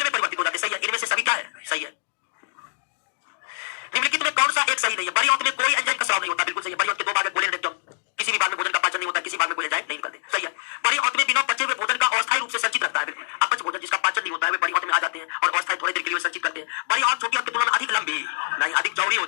में परिवर्तित हो जाते हैं, सही है। इनमें से सभी क्या है? सही है। निम्नलिखित में कौन सा एक सही नहीं है? बड़ी आंत में कोई एंजाइम का स्राव नहीं होता, बिल्कुल सही है। बड़ी आंत के दो भाग है, कोलेन और रेक्टम। किसी भी भाग में भोजन का पाचन नहीं होता, किसी भाग में कोई एंजाइम नहीं निकलते, सही है। बड़ी आंत में बिना पचे हुए भोजन का अस्थायी रूप से संचित रहता है, बिल्कुल। अपच भोजन जिसका पाचन नहीं होता है वे बड़ी आंत में आ जाते हैं और अस्थायी थोड़ी देर के लिए संचित करते हैं। बड़ी आंत छोटी आंत की तुलना में अधिक लंबी नहीं, अधिक चौड़ी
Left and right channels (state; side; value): silent; right; digital silence